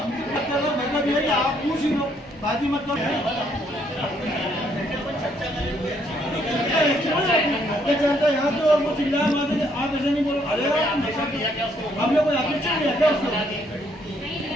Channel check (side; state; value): both; normal; correlation 0.69